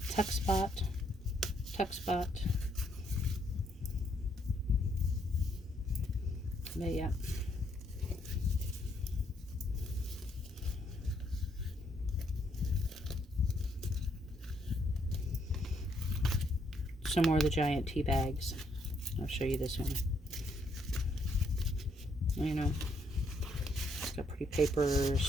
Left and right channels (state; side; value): normal; both; correlation 0.73